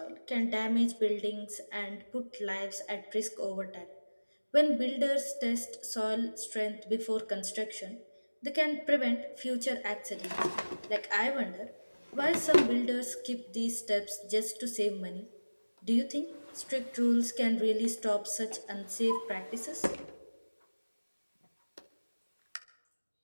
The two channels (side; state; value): both; inverted; correlation -1.00